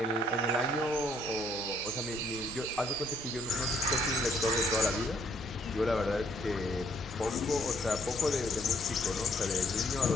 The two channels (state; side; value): normal; both; correlation 0.66